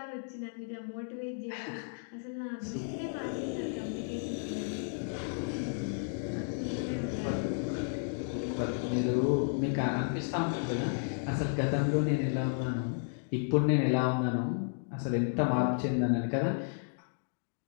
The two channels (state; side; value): silent; right; digital silence